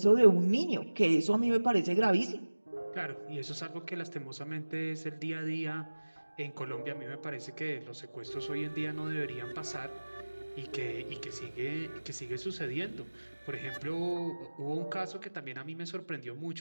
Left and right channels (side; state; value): both; inverted; correlation -1.00